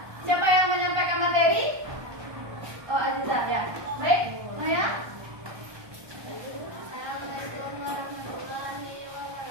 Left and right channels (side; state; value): left; late; 1.2 ms